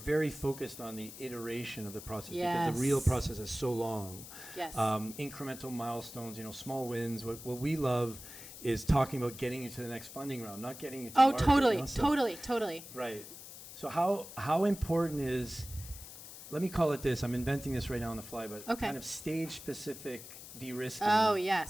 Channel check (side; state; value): left; noise; hiss, 14 dB below the sound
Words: focused on the iteration of the process, yes, because the real process is so long. Yes. Incremental milestones, small wins. What we love is talking about getting you to the next funding round, not getting you to market. Totally. Right. So how important is, let me call it this, I'm inventing this right now on the fly, but kind of stage-specific de-risking. Oh,